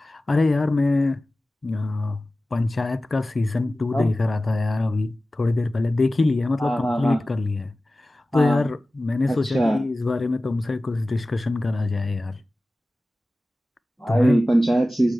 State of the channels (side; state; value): both; normal; correlation 0.96